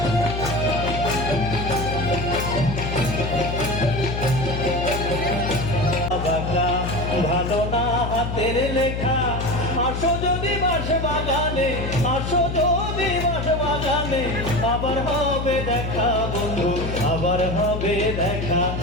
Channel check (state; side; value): noise; left; hum, 3 dB below the sound